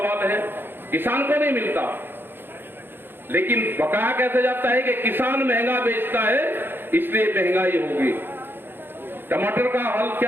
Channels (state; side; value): late; left; 0.10 ms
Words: है। किसान को नहीं मिलता, लेकिन बकाया कैसे जाता है कि किसान महंगा बेचता है इसलिए महंगाई होगी। टमाटर का हाल